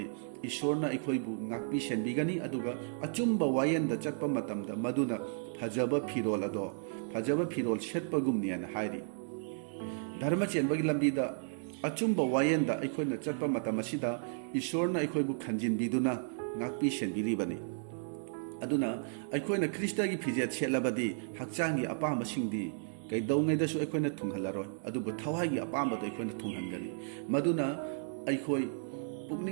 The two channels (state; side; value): silent; left; digital silence